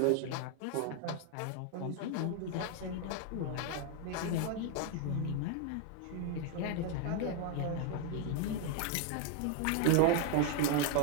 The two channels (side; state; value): both; different; correlation 0.00